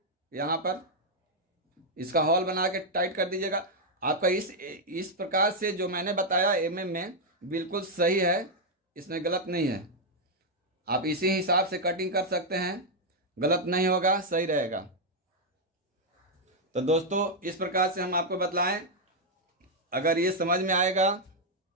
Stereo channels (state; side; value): normal; both; correlation -0.01